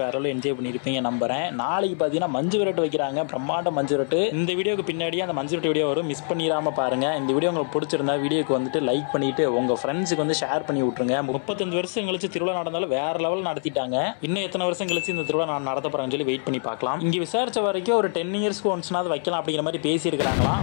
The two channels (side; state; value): right; silent; 60 dB below the other